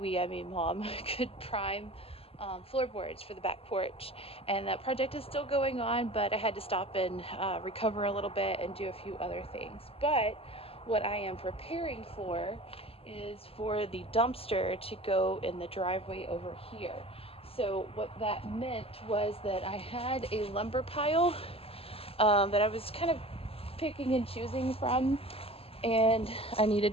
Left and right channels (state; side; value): late; right; 0.28 ms